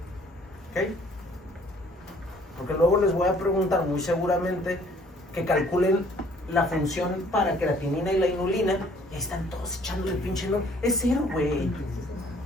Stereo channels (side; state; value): both; normal; correlation 0.58